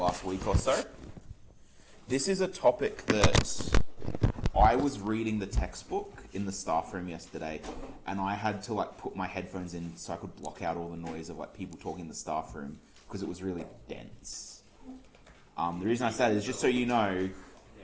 week or so. This is a topic that I was reading the textbook in the staff room yesterday, and I had to put my headphones in so I could block out all the noise of people talking in the staff room because it was really dense. The reason I say that is just so you know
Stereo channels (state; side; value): identical; both; correlation 1.00